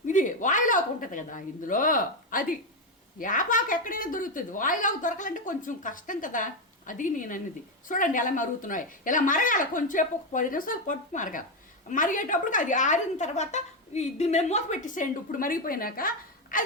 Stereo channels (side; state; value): both; normal; correlation 0.08